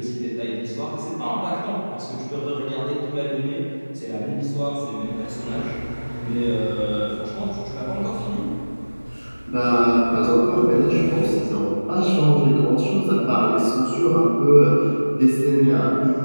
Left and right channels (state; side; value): inverted; both; correlation -1.00